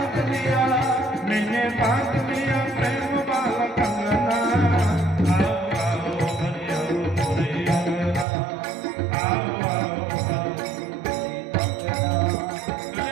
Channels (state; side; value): drops out; left; at 8.2 s